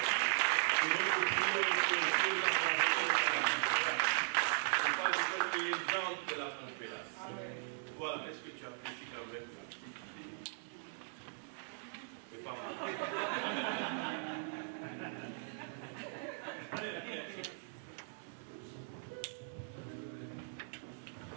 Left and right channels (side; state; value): left; silent; digital silence